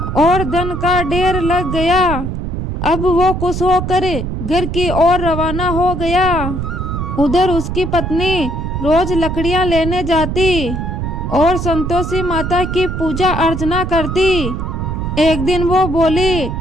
और धन का ढेर लग गया। अब वो खुश होकर घर की ओर रवाना हो गया। उधर उसकी पत्नी रोज लकड़ियां लेने जाती और संतोषी माता की पूजा अर्चना करती। एक दिन वो बोली,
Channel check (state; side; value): noise; right; rumble, 3 dB below the sound